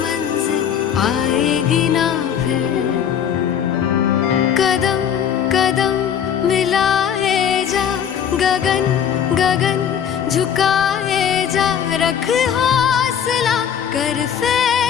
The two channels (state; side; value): quieter; right; 8.5 dB